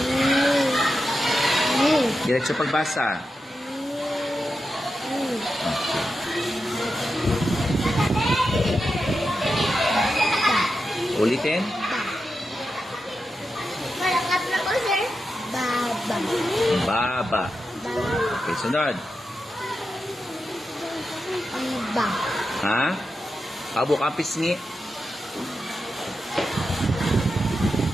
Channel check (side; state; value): both; normal; correlation 0.89